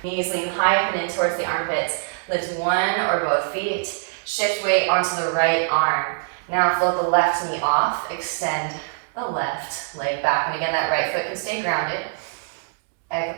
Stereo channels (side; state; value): left; silent; 63 dB below the other